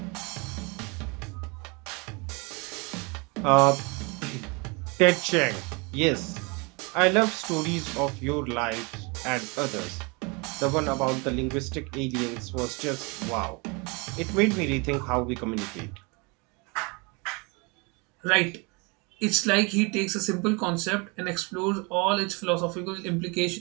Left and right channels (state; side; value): quieter; left; 29.5 dB